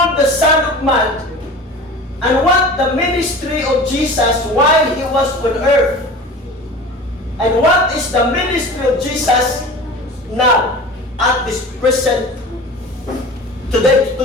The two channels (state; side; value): normal; both; correlation 0.37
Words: the Son of Man? And what the ministry of Jesus while He was on earth? And what is the ministry of Jesus now at this present today,